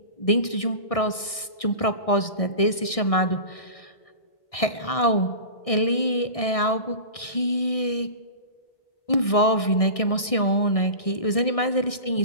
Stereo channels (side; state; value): right; late; 1.6 ms